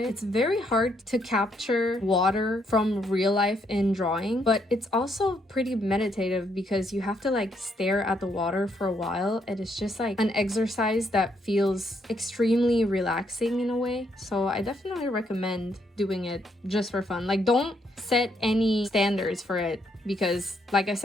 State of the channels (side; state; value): both; normal; correlation 0.74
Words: It's very hard to capture water from real life in drawing, but it's also pretty meditative because you have to like stare at the water for a while, and it's just like an exercise that feels extremely relaxing in a way. So I definitely recommend doing it just for fun. Like, don't set any standards for it because, like I